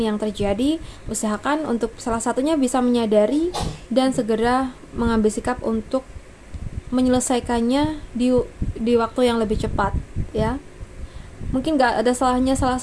terjadi, usahakan untuk salah satunya bisa menyadari dan segera mengambil sikap untuk menyelesaikannya di waktu yang lebih cepat ya. Mungkin gak ada salahnya salah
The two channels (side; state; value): both; identical; correlation 1.00